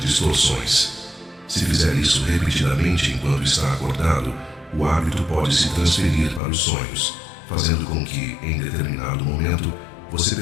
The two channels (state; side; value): drops out; right; at 6.4 s